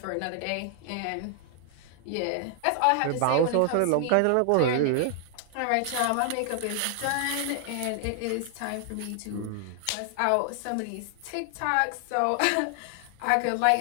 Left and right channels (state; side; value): different; both; correlation 0.00